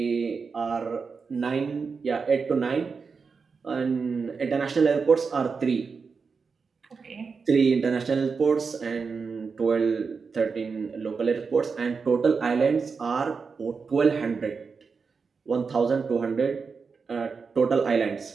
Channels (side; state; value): left; quieter; 5.1 dB